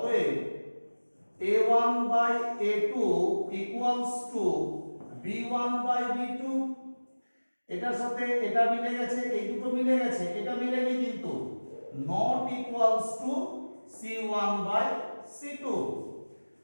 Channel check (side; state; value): both; inverted; correlation -1.00